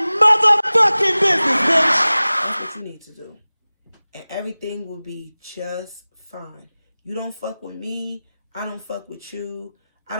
motherfucking business, bitch. That's what you need to do. And everything will be just fine. You don't fuck with me. I don't fuck with you. I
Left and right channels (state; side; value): inverted; both; correlation -0.98